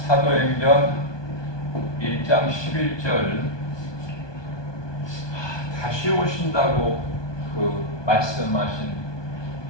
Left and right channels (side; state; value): right; late; 1.2 ms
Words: 1장 11절 다시 오신다고 그 말씀하신